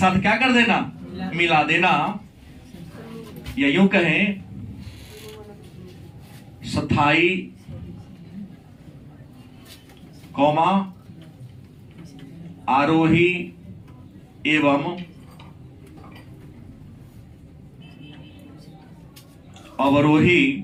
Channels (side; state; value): both; identical; correlation 1.00